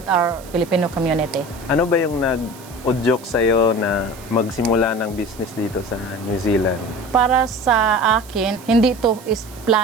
our Filipino community. Ano ba yung nag-udyok sa'yo na magsimula ng business dito sa New Zealand? Para sa akin, hindi to is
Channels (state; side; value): noise; right; hiss, 21 dB below the sound